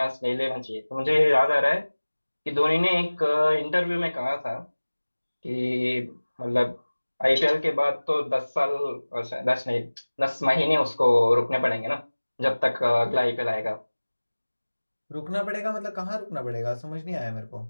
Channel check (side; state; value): both; inverted; correlation -1.00